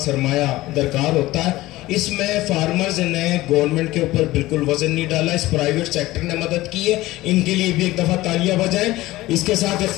سرمایہ درکار ہوتا ہے۔ اس میں فارمرز نے گورنمنٹ کے اوپر بالکل وزن نہیں ڈالا، اس پرائیویٹ سیکٹر نے مدد کی ہے، ان کے لیے بھی ایک دفعہ تالیاں بجائیں۔ اس کے ساتھ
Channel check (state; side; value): quieter; right; 17.7 dB